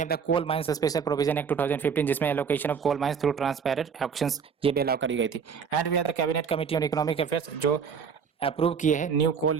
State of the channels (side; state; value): left; quieter; 6.5 dB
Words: the coal mines special provision act 2015 जिसमें allocation of coal mines through transparent auctions ये भी अलाउ करी गई थी। And we have the cabinet committee on economic affairs जो अप्रूव किए हैं न्यू कोल